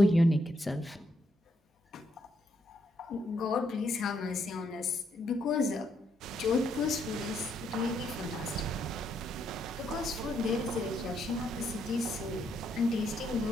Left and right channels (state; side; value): normal; both; correlation 0.75